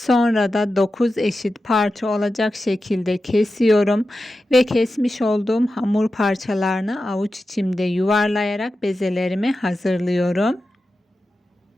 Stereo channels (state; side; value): normal; both; correlation 0.92